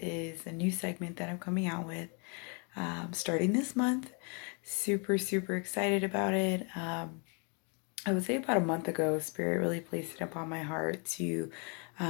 a new segment that I'm coming out with starting this month. Super excited about it. I would say about a month ago, Spirit really placed it upon my heart to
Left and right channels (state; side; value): quieter; right; 35.9 dB